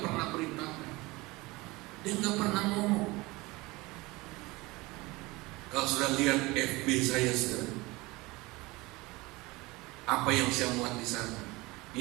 pernah beritakan, dia nggak pernah ngomong. Kalau sudah lihat FB saya sekarang, apa yang saya muat di sana,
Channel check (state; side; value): quieter; left; 22.4 dB